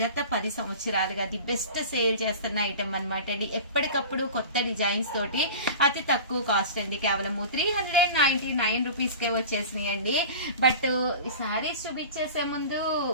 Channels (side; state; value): both; inverted; correlation -0.35